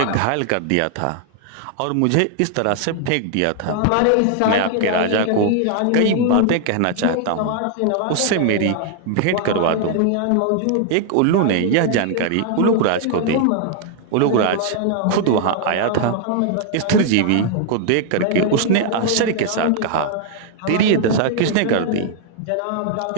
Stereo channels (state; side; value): different; both; correlation 0.00